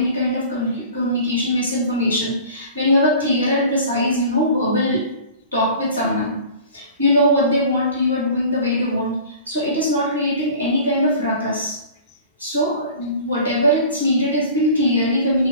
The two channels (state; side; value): inverted; both; correlation -0.42